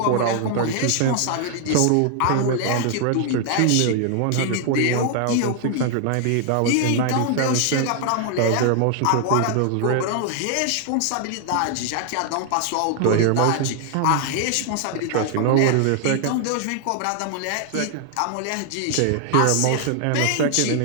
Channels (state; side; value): different; both; correlation 0.00